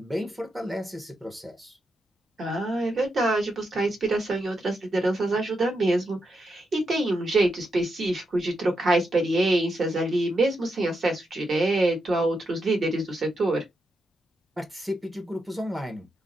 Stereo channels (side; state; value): both; normal; correlation 0.84